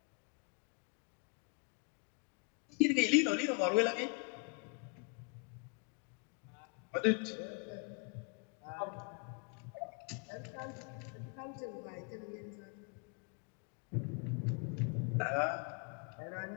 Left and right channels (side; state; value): right; quieter; 34.3 dB